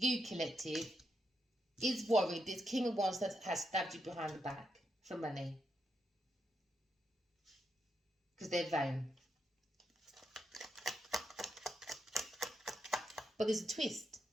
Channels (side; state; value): both; normal; correlation 0.83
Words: collective, is worried this King of Wands that has stabbed you behind the back for money. Because they're vain. But there's a twist.